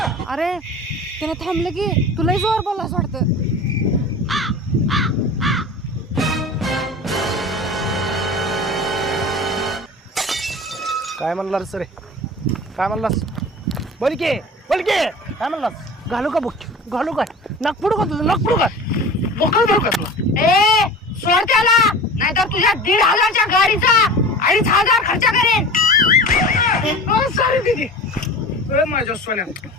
अरे त्यानं थांबलं की तुलाही जोर बोलला असं वाटतं. काय म्हणलास रे? काय म्हणलास? बोल की काय म्हणलास? घालू का बुक? घालू काय? नागपुडू का तुझं? नागपुडू का? बोकळ धरू का तुला? ए सोड त्याला नाहीतर तुझ्या 1,500च्या गाडीचा 2,500 खर्च करेन. सॉरी दीदी. माझ्या सोन्या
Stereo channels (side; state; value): both; normal; correlation 0.36